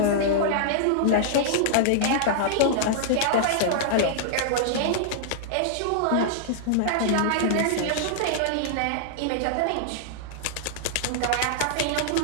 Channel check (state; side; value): different; both; correlation -0.01